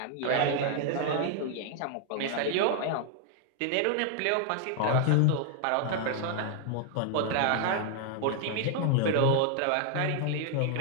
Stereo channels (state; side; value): different; both; correlation 0.00